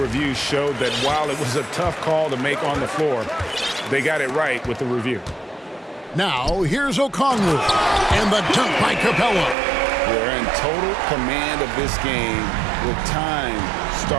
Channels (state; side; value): drops out; left; at 9.6 s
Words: showed that while it was a tough call to make on the floor, they got it right with the review. Now, here's Okongwu and the dunk by Capella. We're in total command of this game with time